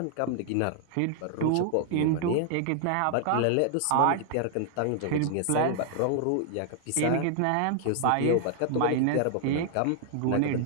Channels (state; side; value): different; both; correlation 0.00